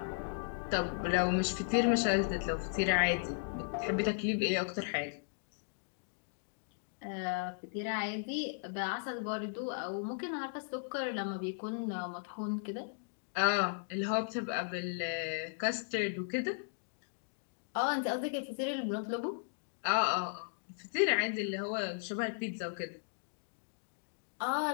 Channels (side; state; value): right; silent; digital silence